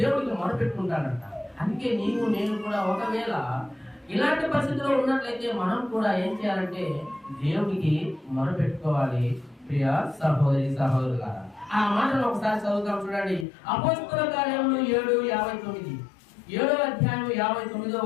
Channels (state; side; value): drops out; right; at 13.5 s